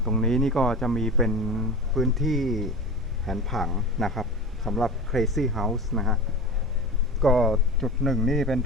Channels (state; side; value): normal; both; correlation 0.32